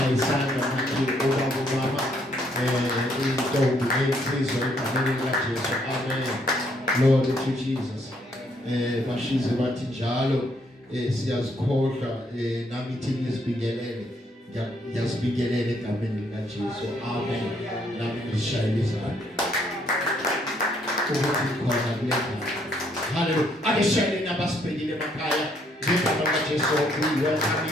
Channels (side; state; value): both; normal; correlation 0.70